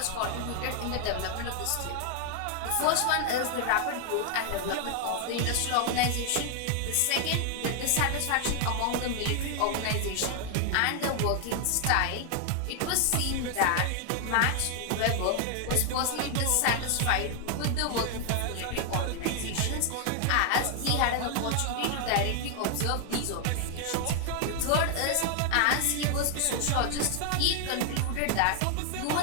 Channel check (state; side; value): different; both; correlation 0.00